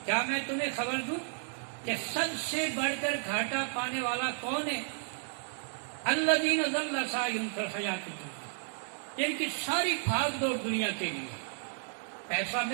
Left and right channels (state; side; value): silent; left; 56 dB below the other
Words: کیا میں تمہیں خبر دوں کہ سب سے بڑھ کر گھاٹا پانے والا کون ہے؟ الذین ضل سعیہم فی الحیاۃ الدنیا، جن کی ساری بھاگ دوڑ دنیا کے لیے، پیسہ